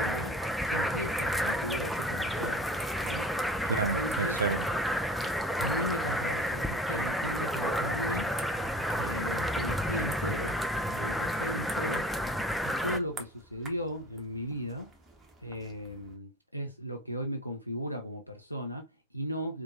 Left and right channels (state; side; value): normal; both; correlation 0.38